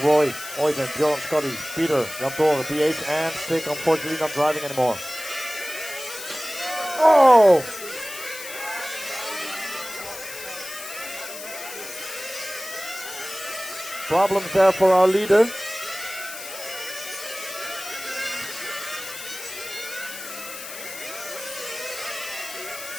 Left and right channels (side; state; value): left; noise; hiss, 11 dB below the sound